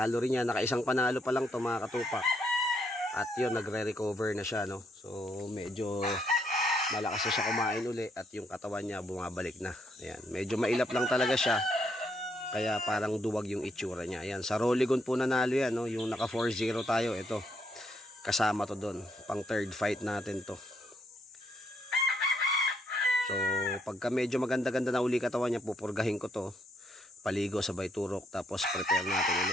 rin yan, nakaisang panalo pa lang to mga katupak. At yun, nagre-recover na siya, no? So medyo malakas na siya kumain uli at yung katawan niya bumabalik na. Ayan, medyo mailap lang talaga siya, kaya parang duwag yung itsura niya. Ayan, sa Roligon po nanalo yan, no? Yung naka 4-0 tayo, ito. Kasama to doon. Pang third fight natin to. So, pagka medyo maganda-ganda na uli katawan niya, pupurgahin ko to. Paligo, sabay turok, tapos prepare natin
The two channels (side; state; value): both; normal; correlation 0.74